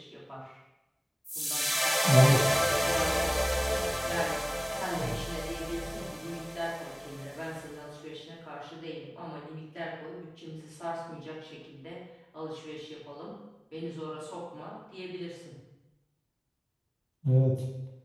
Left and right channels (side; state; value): both; identical; correlation 1.00